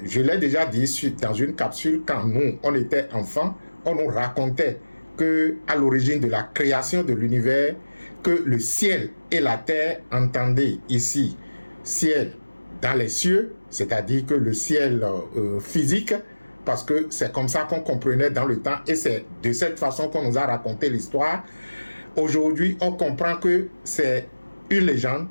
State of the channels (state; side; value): inverted; both; correlation -1.00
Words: je l'ai déjà dit dans une capsule, quand nous, on était enfants, on nous racontait que à l'origine de la création de l'univers, que le ciel et la terre, entendez ici, ciel dans les cieux, c'est-à-dire que le ciel physique, parce que c'est comme ça qu'on comprenait dans le temps et c'est de cette façon qu'on nous a raconté l'histoire. Aujourd'hui, on comprend que c'est une légende,